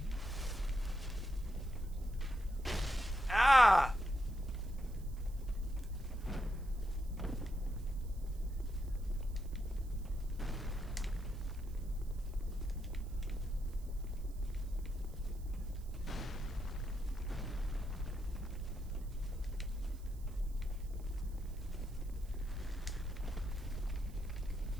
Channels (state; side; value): noise; right; hiss, 24 dB below the sound